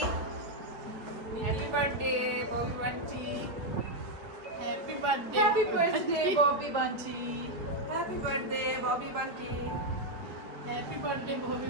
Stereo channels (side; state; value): left; late; 4.2 ms